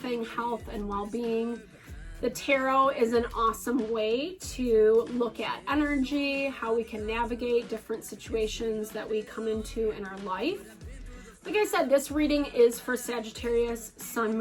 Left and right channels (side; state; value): both; identical; correlation 1.00